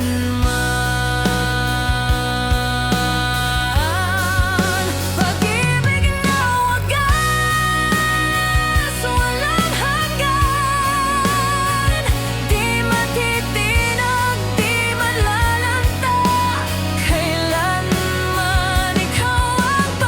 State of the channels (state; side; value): identical; both; correlation 1.00